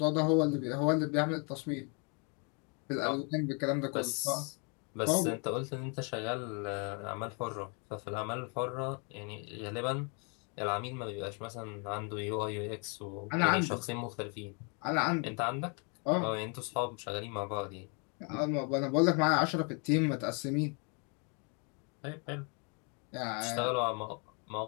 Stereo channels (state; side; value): quieter; right; 35.8 dB